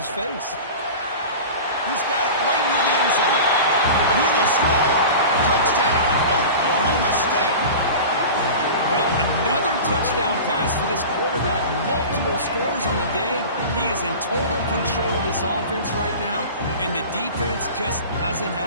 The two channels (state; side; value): inverted; both; correlation -0.34